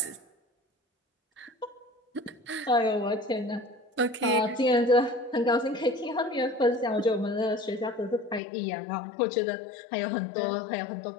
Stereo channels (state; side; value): drops out; right; at 8.4 s